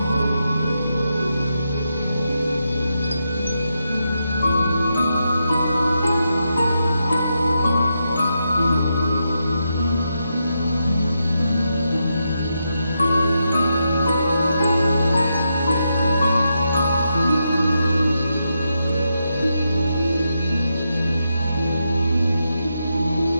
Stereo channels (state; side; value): inverted; both; correlation -0.84